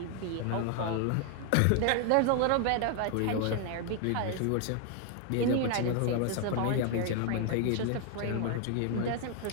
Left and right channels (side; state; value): both; different; correlation 0.00